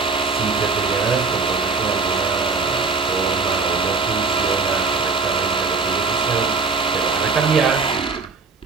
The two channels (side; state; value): left; quieter; 4.5 dB